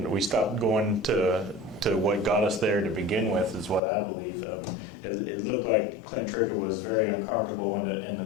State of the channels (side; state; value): right; drops out; at 3.8 s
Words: we stopped going to what got us there to begin with, is what I believe. It looked like Clint Trickett was very uncomfortable in